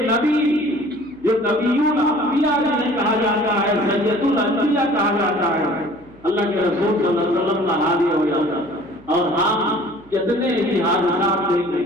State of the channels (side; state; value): right; noise; hum, 26 dB below the sound